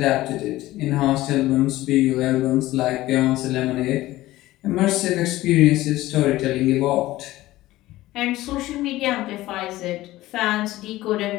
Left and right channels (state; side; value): quieter; right; 16.8 dB